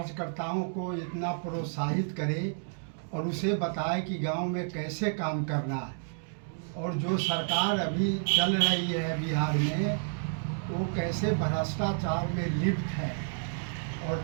को इतना प्रोत्साहित करे और उसे बताए कि गांव में कैसे काम करना है। और जो सरकार अभी चल रही है बिहार में वो कैसे भ्रष्टाचार में लिप्त है और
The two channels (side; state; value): left; silent; digital silence